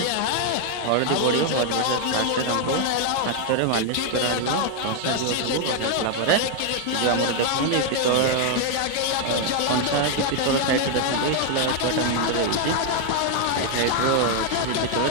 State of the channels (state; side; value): different; both; correlation 0.01